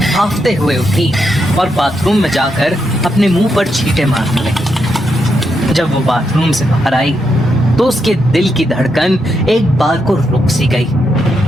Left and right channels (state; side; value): normal; both; correlation 0.82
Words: हांफते हुए उठी और बाथरूम में जाकर अपने मुंह पर छींटे मारने लगी। जब वो बाथरूम से बाहर आई तो उसके दिल की धड़कन एक बार को रुक सी गई,